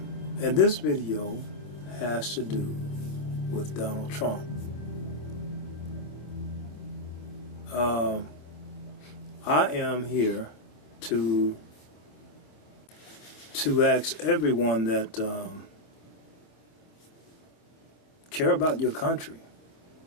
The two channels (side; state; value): right; late; 26 ms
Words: And this video has to do with Donald Trump. I am here to ask everyone that care about your country